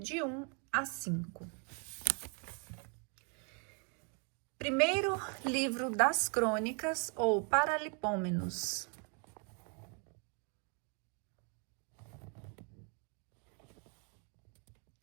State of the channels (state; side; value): quieter; left; 37.7 dB